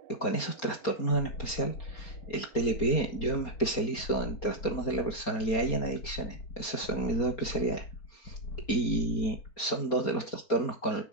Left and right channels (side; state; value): right; late; 4.3 ms